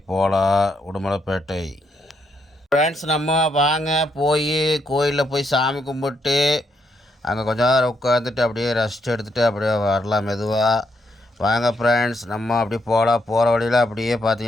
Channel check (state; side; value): normal; both; correlation 0.77